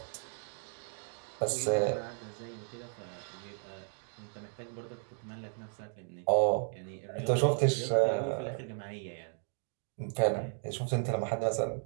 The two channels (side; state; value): left; silent; 55 dB below the other